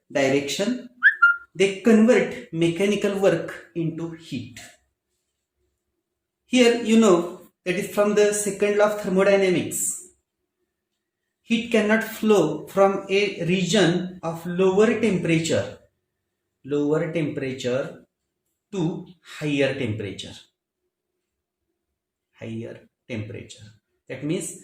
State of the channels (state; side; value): identical; both; correlation 1.00